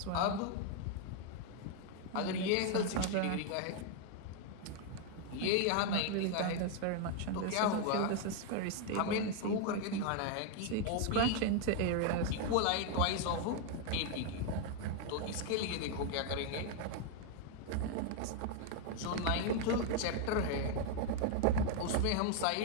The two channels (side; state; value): both; different; correlation 0.01